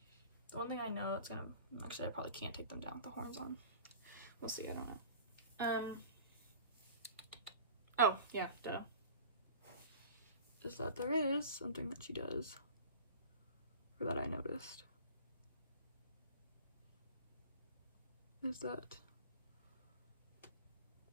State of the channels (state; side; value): inverted; both; correlation -0.41